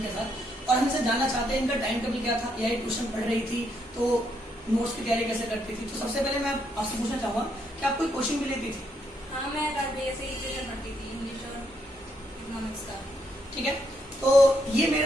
साथ। और हमसे जानना चाहते हैं इनका टाइम टेबल क्या था, या ट्यूशन पढ़ रही थी तो नोट्स की तैयारी कैसे करती थी। तो सबसे पहले मैं आपसे पूछना चाहूंगा कि आप कोई कोचिंग भी लेती थी? हाँ, मैं राज भैया से ही ट्यूशन पढ़ती थी, इंग्लिश और इकोनॉमिक्स का। ठीक है, तो ये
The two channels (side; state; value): both; normal; correlation 0.76